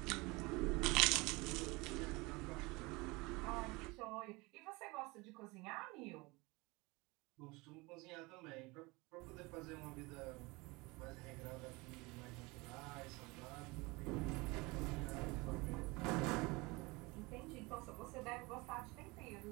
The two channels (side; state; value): left; quieter; 24.6 dB